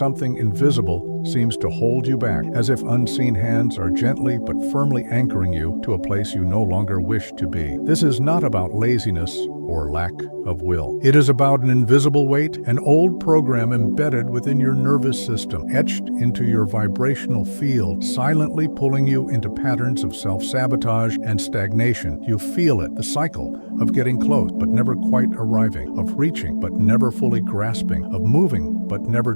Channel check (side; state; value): both; inverted; correlation -1.00